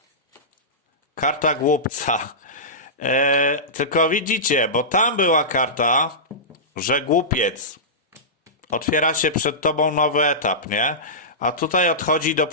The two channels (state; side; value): normal; both; correlation -0.17